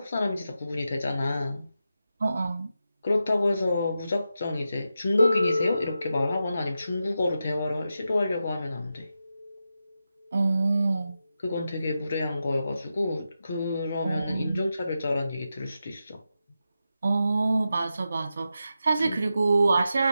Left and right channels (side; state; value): both; inverted; correlation -0.89